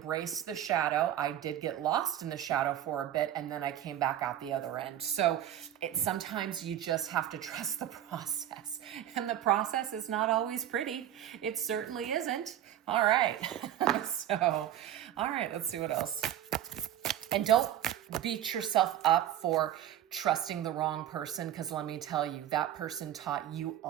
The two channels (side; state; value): left; quieter; 11.6 dB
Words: the shadow. I did get lost in the shadow for a bit, and then I came back out the other end. So sometimes you just have to trust the process. And the process is not always pretty. It certainly isn't. All right. So, all right, let's see what else. And don't beat yourself up for trusting the wrong person, because let me tell you, that person taught you a